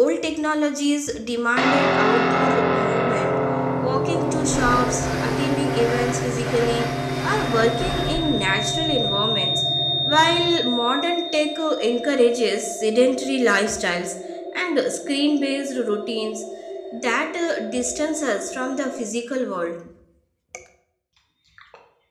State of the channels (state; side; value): identical; both; correlation 1.00